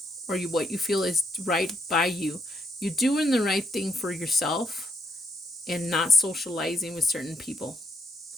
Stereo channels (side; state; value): both; normal; correlation 0.74